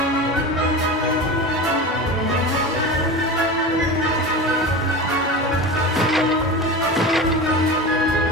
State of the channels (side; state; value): both; normal; correlation 0.28